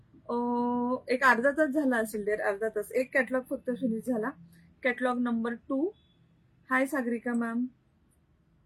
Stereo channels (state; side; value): identical; both; correlation 1.00